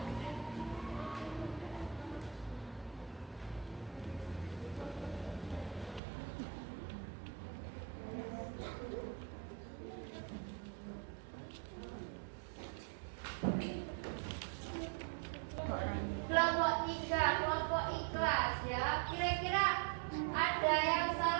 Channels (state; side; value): drops out; left; at 6.0 s